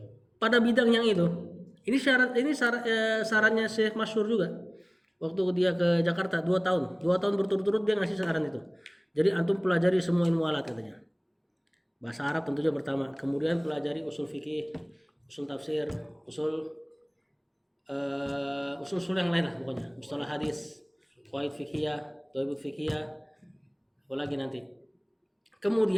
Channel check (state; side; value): identical; both; correlation 1.00